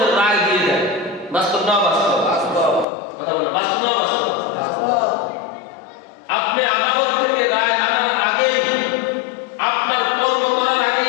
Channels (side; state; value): right; drops out; at 2.9 s